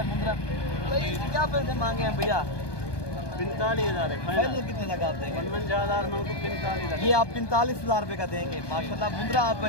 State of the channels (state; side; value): late; right; 1.2 ms